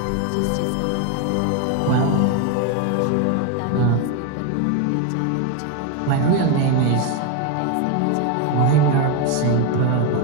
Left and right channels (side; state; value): both; different; correlation 0.02